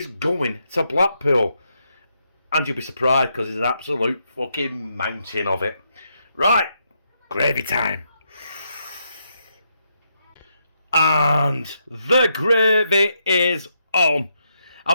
going to Blackpool. And you'll be surprised because there's an absolute fucking mountain of it. Right, gravy time. And the gravy is on.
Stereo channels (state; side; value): inverted; both; correlation -0.80